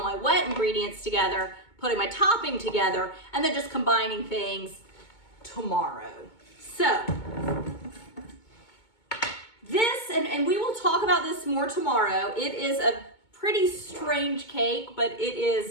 my wet ingredients together, putting my topping together, and then just combining things tomorrow. So, this, and we will talk about this more tomorrow, it is a pretty strange cake, but it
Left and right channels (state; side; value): late; right; 2.2 ms